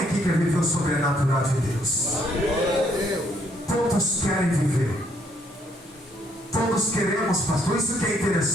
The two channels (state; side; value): normal; both; correlation 0.69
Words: aqui quer viver o sobrenatural de Deus? Todos querem viver. Todos queremos, pastor. Isso que é